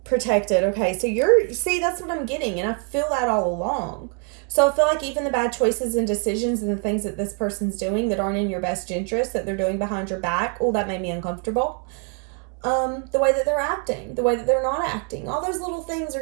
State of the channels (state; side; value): quieter; left; 39.9 dB